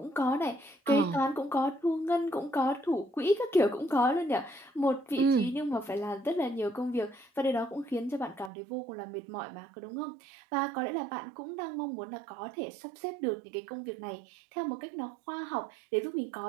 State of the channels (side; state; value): left; drops out; at 8.5 s